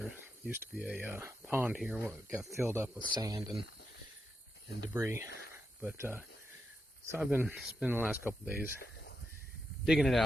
used to be a pond here that got filled up with sand and debris. But so I've been spending the last couple days digging it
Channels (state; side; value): normal; both; correlation 0.86